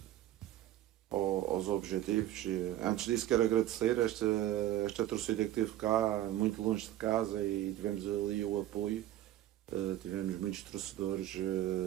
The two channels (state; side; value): quieter; left; 13.5 dB